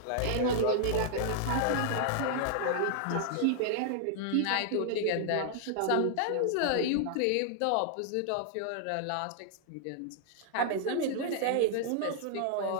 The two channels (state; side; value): different; both; correlation -0.01